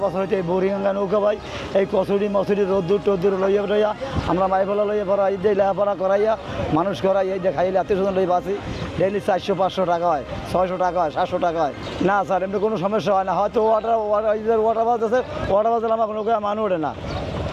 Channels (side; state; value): both; identical; correlation 1.00